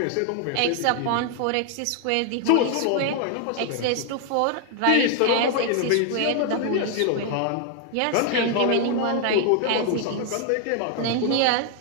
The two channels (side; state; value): both; different; correlation 0.00